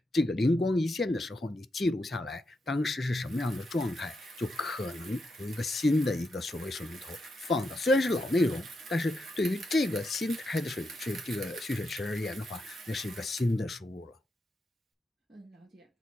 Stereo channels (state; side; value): normal; both; correlation 0.84